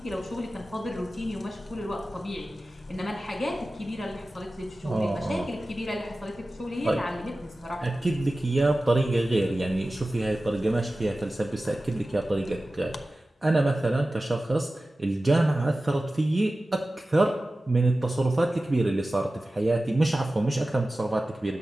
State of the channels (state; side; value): normal; both; correlation 0.96